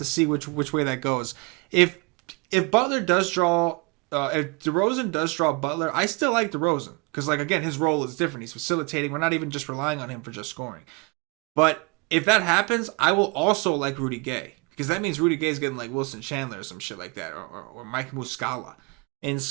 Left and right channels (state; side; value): quieter; left; 29.2 dB